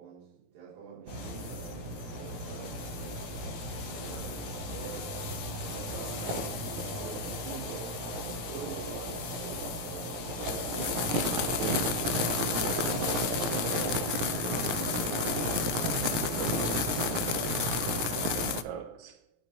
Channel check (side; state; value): left; late; 17 ms